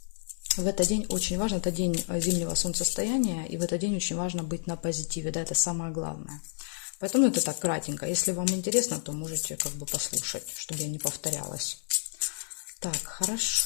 В этот день очень важно, это день зимнего солнцестояния, и в этот день очень важно быть на позитиве, да, это самое главное. Поэтому это так кратенько. Если вам интересно, то можете как бы послушать, чтобы я не повторялась. Так,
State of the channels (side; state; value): right; silent; 58 dB below the other